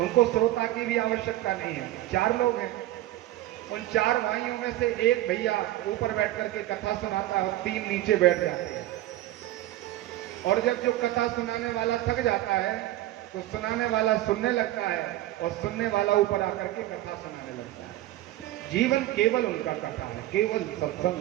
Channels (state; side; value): quieter; left; 15.1 dB